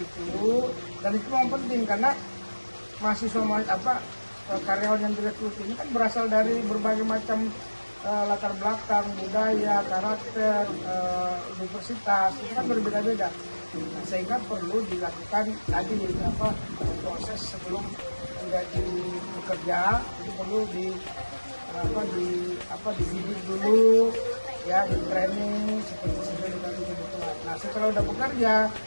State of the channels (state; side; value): inverted; both; correlation -1.00